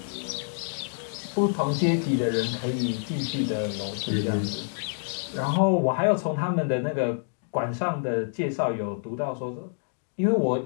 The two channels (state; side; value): silent; right; digital silence